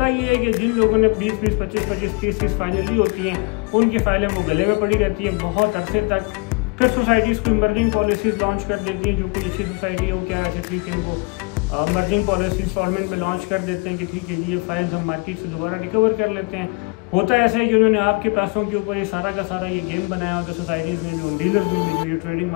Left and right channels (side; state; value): right; quieter; 29.6 dB